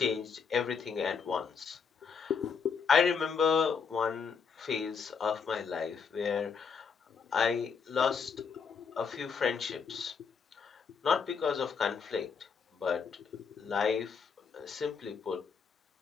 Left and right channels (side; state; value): right; quieter; 6.1 dB